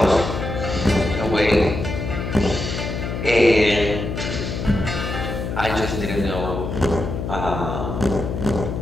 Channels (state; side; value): noise; left; hum, 4 dB below the sound